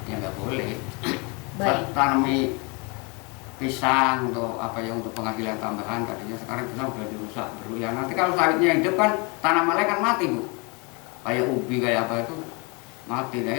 ya nggak boleh. Baik. Tanami pisang untuk untuk penghasilan tambahan, tadinya sekarang pisang udah dirusak dulu ya. Nanti kalau sawitnya hidup kan tanamannya kan mati Bu. Kayak ubi kayak apa itu mati,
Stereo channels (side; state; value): right; quieter; 30.4 dB